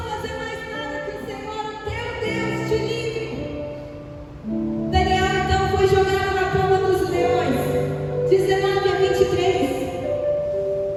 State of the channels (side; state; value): both; identical; correlation 1.00